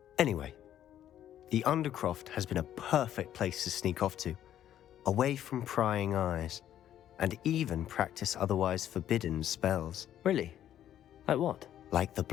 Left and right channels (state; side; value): quieter; right; 11.2 dB